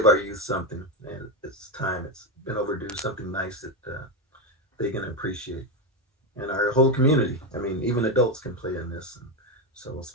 our youth something, and it's time. It's been overdue. Something nice that they can appreciate, and our whole community. I mean, even adults can play in this. And so,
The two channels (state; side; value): normal; both; correlation 0.10